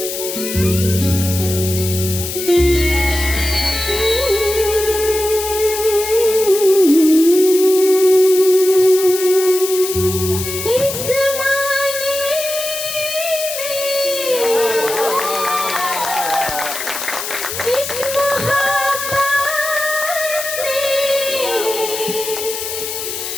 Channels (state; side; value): noise; left; hiss, 6 dB below the sound